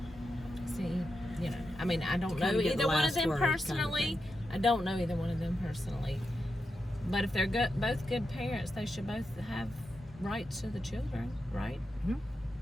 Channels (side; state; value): both; normal; correlation 0.87